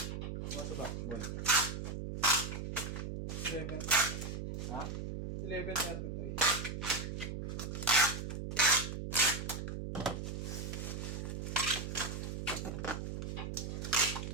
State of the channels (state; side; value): noise; right; hum, 4 dB below the sound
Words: Ano ba, boy? 11. Ha? 11:33.